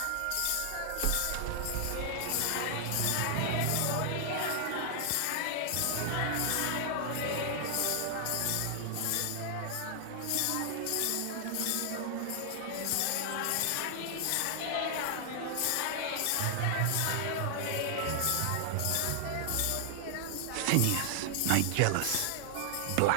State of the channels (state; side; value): different; both; correlation 0.00